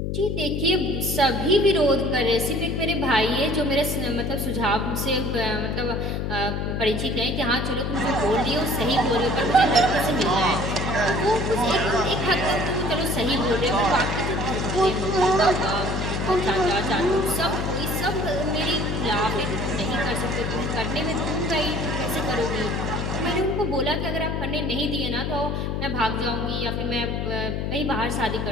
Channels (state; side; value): noise; left; hum, 1 dB below the sound